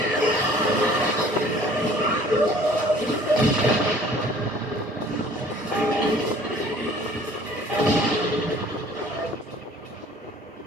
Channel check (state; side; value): normal; both; correlation 0.52